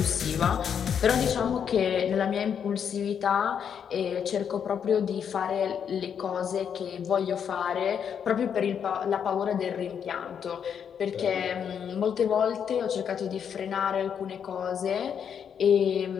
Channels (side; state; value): right; quieter; 7.8 dB